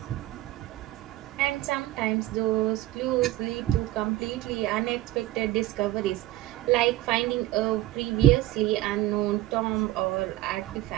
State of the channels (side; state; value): left; quieter; 15.9 dB